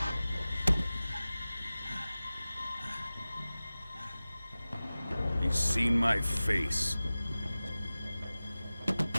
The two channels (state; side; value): inverted; both; correlation -0.97